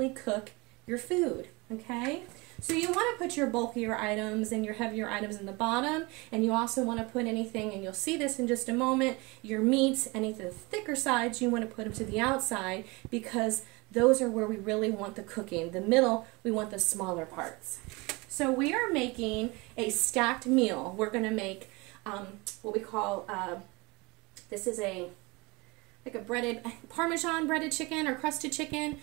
cook your food, okay? So you want to put your bulkier items and your heavier items in the bottom, and you also want to put anything, and you'll see this in just a moment, your meats, any of the thicker sides, you want to put them to the outside, because those are where we really want the cooking. The middle, we want the smaller parts. So we are making a stacked meal. We're going to make what we call, this is like a breaded, Parmesan breaded chicken or crusted chicken,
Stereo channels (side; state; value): left; quieter; 25.6 dB